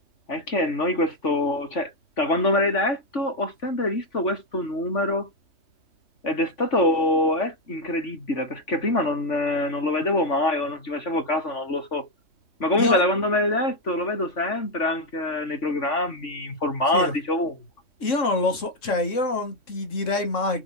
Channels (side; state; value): right; late; 3.7 ms